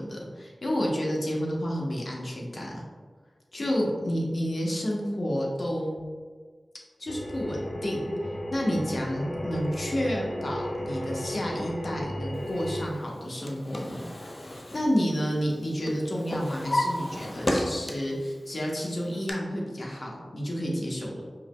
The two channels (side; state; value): both; normal; correlation 0.96